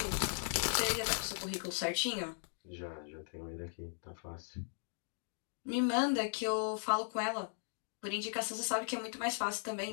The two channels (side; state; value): right; silent; digital silence